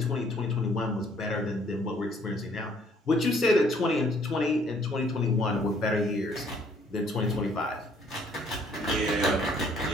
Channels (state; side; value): normal; both; correlation 0.62